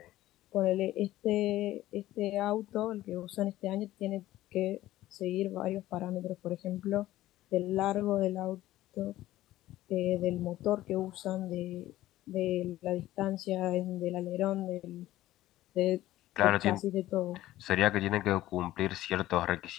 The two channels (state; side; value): quieter; right; 15.2 dB